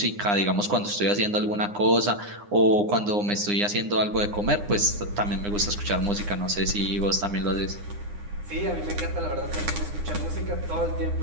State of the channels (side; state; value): left; late; 9.8 ms